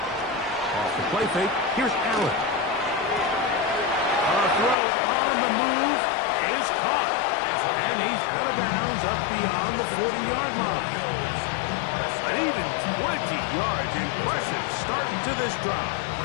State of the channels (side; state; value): right; drops out; at 4.8 s